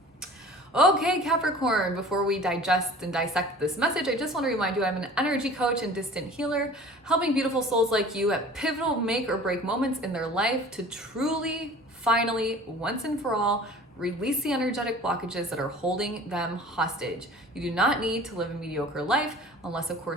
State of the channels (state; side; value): normal; both; correlation 0.44